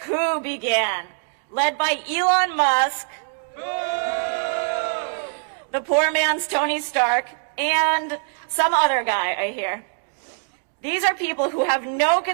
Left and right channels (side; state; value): left; silent; digital silence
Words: coup began, led by Elon Musk, the poor man's Tony Stark, and some other guy, I hear. These are people who have no